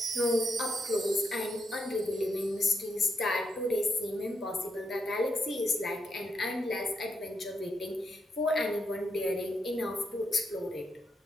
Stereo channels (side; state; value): both; normal; correlation 0.80